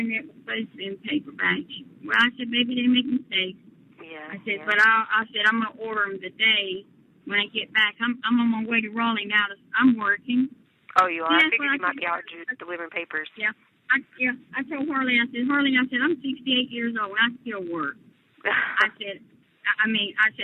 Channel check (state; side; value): identical; both; correlation 1.00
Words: was supposed to be in paperback. Well, I said, maybe they make mistakes. Yeah. I said, but I said, I'm going to order them today when I get back. I'm on my way to Raleigh now. I'm working. Oh, you are? I figured you might be out delivering papers. Yeah. I told Harley, I said, I'm 68 years old, and I still work. I said,